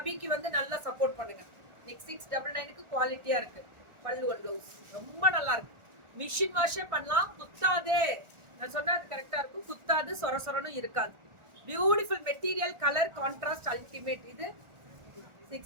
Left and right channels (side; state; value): left; late; 1.4 ms